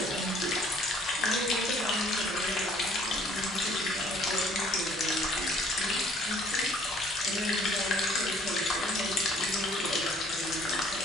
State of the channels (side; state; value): both; normal; correlation 0.58